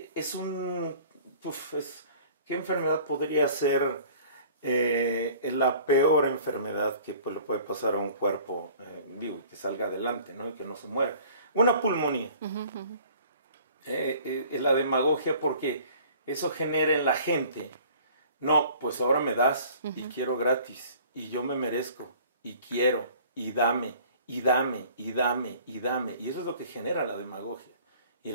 ¿qué enfermedad podría ser la peor enfermedad que le puede pasar a un cuerpo vivo y que salga adelante, ¿no? Y que no se muera? Una pulmonía. La demagogia, porque eso genera en la gente, no, pues ahora me das y quiero gratis y yo me merezco y quiero y dame y dame y dame y dame, y eso es lo que genera la demagogia y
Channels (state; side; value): inverted; both; correlation -0.50